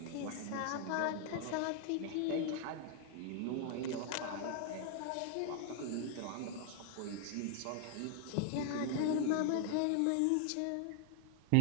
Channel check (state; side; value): different; both; correlation 0.00